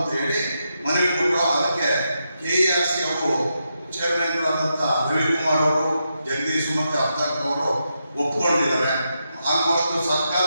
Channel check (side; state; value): both; inverted; correlation -0.84